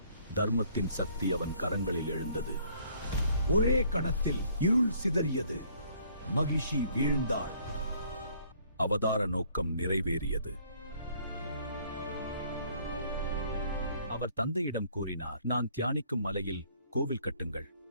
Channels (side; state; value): both; inverted; correlation -0.61